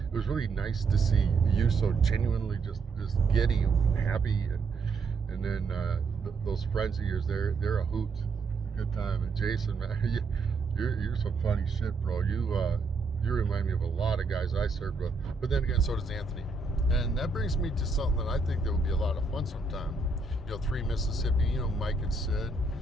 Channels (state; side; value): quieter; left; 4.0 dB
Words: was really nice to see you so genuinely just giddy and happy, and then those friends of yours, they're a hoot, good time. And Jason, man, you're some funny shit, bro. You remind me of a lot of guys I served with, but then again, so does Anthony. And that brings me to something that I think that would be a lot of fun sometime. 3 Mississippi, Mike and Sid.